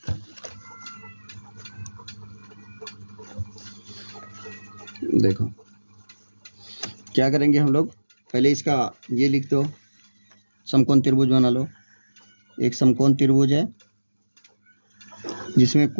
देखो क्या करेंगे हम लोग, पहले इसका ये लिख दो, समकोण त्रिभुज बना लो। एक समकोण त्रिभुज है जिसमें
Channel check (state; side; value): inverted; both; correlation -1.00